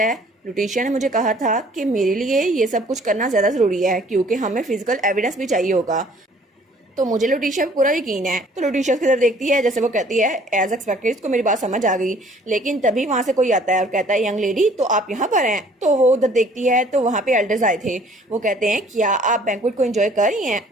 है लुटिशिया ने मुझे कहा था कि मेरे लिए ये सब कुछ करना ज़्यादा ज़रूरी है क्योंकि हमें फिजिकल एविडेंस भी चाहिए होगा। तो मुझे लुटिशिया पे पूरा यकीन है। तो लुटिशिया की तरफ देखती है, जैसे वो कहती है एज एक्सपेक्टेड इसको मेरी बात समझ आ गई, लेकिन तभी वहाँ से कोई आता है और कहता है यंग लेडी तो आप यहाँ पर हैं। तो वो उधर देखती है तो वहाँ पे एल्डर्स आए थे। वो कहते हैं क्या आप बैंक्वेट को एंजॉय कर रही हैं?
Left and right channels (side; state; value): both; normal; correlation 0.56